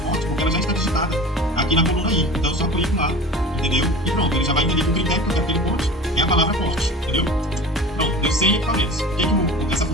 porque ela já está digitada aqui na coluna I. Então, eu só clico lá, entendeu? E pronto, ele já vai entender que o critério que eu quero que ele conte é a palavra corte, entendeu? Pronto, deu 100 equipamentos. O que essa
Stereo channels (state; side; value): normal; both; correlation 0.38